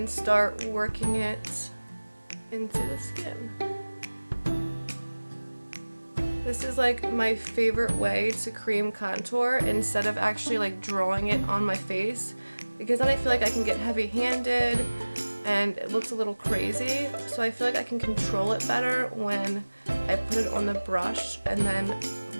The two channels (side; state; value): both; inverted; correlation -1.00